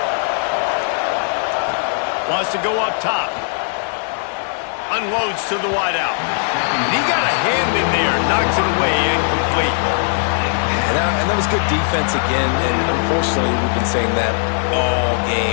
Wants to go up top. Unloads to the wideout. He got a hand in there. Knocks it away. Incomplete. And that was good defense again. And unfortunately, we've been saying that all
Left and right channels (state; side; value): silent; right; 60 dB below the other